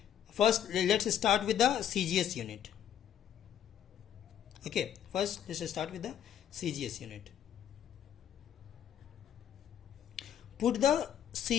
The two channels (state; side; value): quieter; right; 9.9 dB